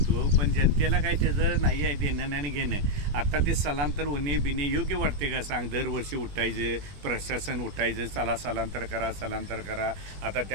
पण जनतेला काय त्याचं नाही आहे देणं आणि घेणं. आता ते स्थलांतर होणे बिणे योग्य वाटते का सांग? दरवर्षी उठायचं, प्रशासन उठायचं, चला स्थलांतर करा. आता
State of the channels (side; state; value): left; late; 20 ms